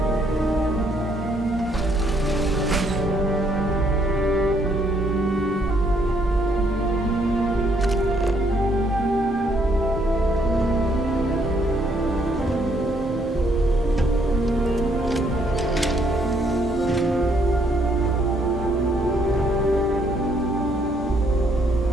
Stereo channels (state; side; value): normal; both; correlation 0.69